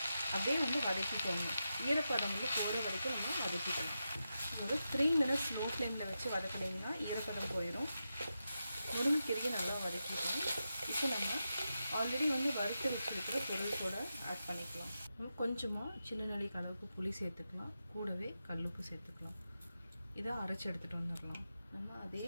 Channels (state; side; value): inverted; both; correlation -0.89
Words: அப்படியே வந்து வதக்கிக்கோங்க. ஈரப்பதம் வந்து போகிற வரைக்கும் நம்ம வதக்கிக்கணும். ஒரு 3 மினிட்ஸ் லோ ஃப்ளேமில் வச்சு வதக்கினீங்கன்னா ஈரப்பதம் போயிடும். முருங்கைக்கீரையை நல்லா வதக்கிட்டோம். இப்போ நம்ம ஆல்ரெடி வந்து வறுத்து வச்சுருக்கிற பொருள் கூட ஆட் பண்ணிக்கலாம். கொஞ்சமாக சின்ன நெல்லிக்காய் அளவுக்கு புளி சேர்த்துக்கலாம். கூடவே கல்லுப்பு சேர்த்துக்கலாம். இதை அரைச்சி எடுத்துகிட்டு வந்துடலாம். நம்ம அதே